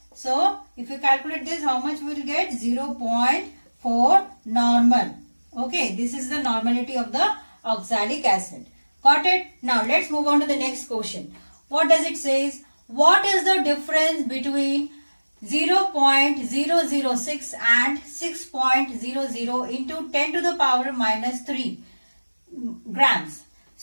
So if you calculate this, how much we will get? 0.4 normal. Okay, this is the normality of the oxalic acid. Got it? Now let's move on to the next question. What does it say? What is the difference between 0.006 and 6.00 into 10 to the power minus 3 grams?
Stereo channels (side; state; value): both; inverted; correlation -1.00